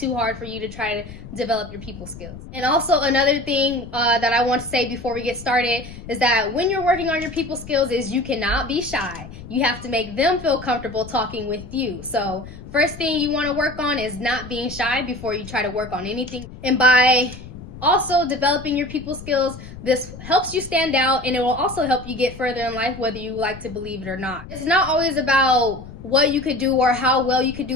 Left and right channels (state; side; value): noise; left; rumble, 15 dB below the sound